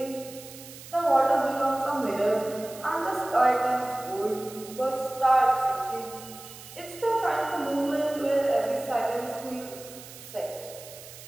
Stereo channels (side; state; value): right; noise; hiss, 16 dB below the sound